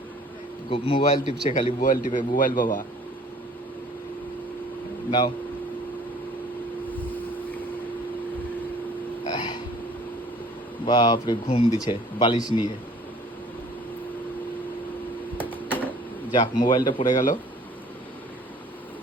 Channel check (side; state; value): both; normal; correlation 0.52